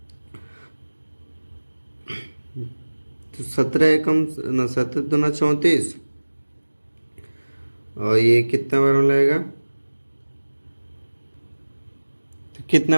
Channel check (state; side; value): inverted; both; correlation -1.00